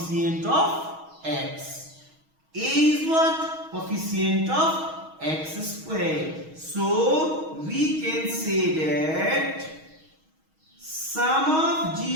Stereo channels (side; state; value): left; late; 6.3 ms